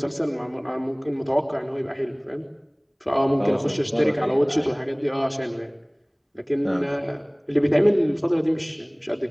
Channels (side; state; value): both; identical; correlation 1.00